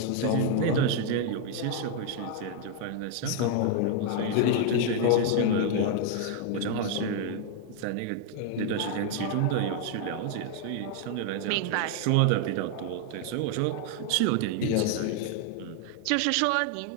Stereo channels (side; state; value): both; different; correlation 0.00